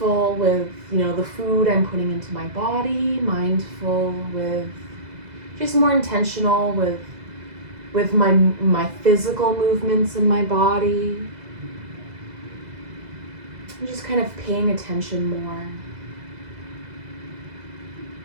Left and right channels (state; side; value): late; left; 2.0 ms